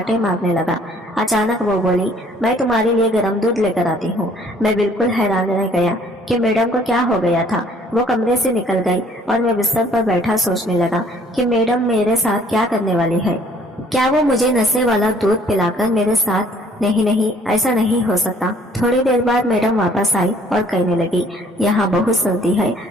मारने लगा। अचानक वो बोली, मैं तुम्हारे लिए गर्म दूध लेकर आती हूँ। मैं बिल्कुल हैरान रह गया कि मैडम को क्या हो गया था। वो कमरे से निकल गई और मैं बिस्तर पर बैठा सोचने लगा कि मैडम मेरे साथ क्या करने वाली है। क्या वो मुझे नशे वाला दूध पिलाकर मेरे साथ? नहीं, ऐसा नहीं हो सकता। थोड़ी देर बाद मैडम वापस आई और कहने लगी, यहाँ बहुत सर्दी है,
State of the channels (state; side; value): normal; both; correlation 0.58